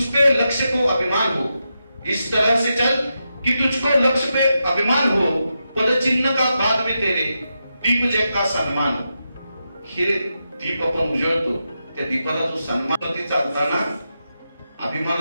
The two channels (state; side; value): inverted; both; correlation -0.87